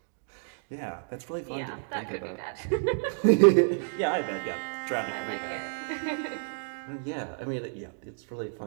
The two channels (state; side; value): silent; left; digital silence